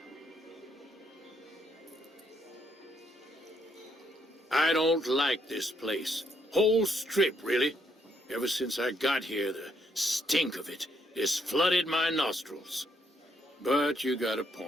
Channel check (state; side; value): normal; both; correlation 0.73